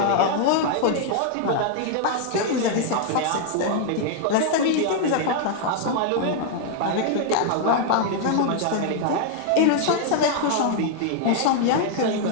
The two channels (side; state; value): both; different; correlation 0.00